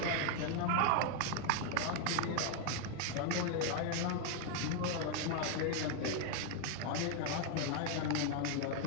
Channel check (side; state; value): both; different; correlation 0.00